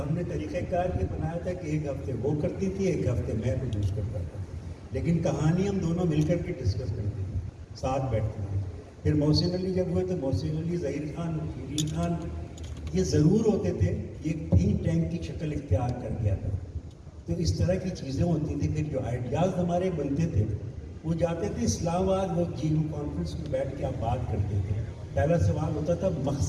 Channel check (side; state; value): both; identical; correlation 1.00